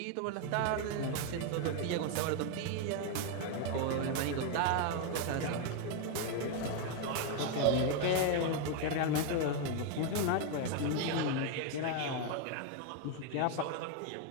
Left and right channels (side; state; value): both; different; correlation 0.01